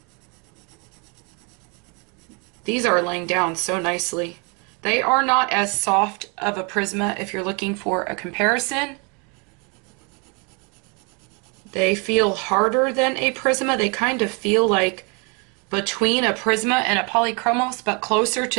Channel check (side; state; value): left; quieter; 32.9 dB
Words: These are laying down so nicely. They are not as soft of a Prisma if you're looking for a comparison. They feel harder than a Prisma. They kind of feel like between a Prisma and a Polychromos, but closer to